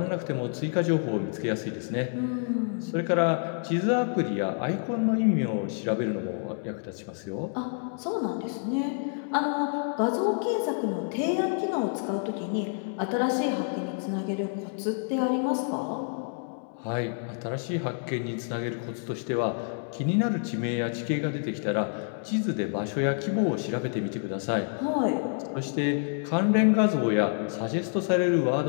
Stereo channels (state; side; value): silent; right; 59 dB below the other